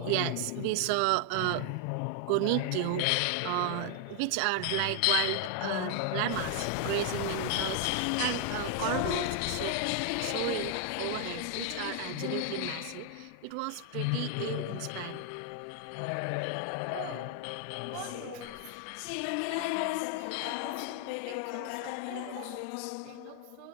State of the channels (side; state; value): both; different; correlation 0.00